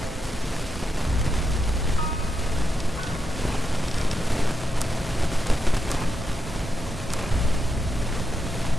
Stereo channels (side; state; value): both; normal; correlation 0.84